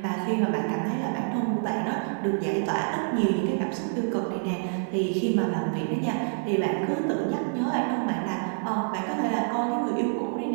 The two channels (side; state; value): left; silent; digital silence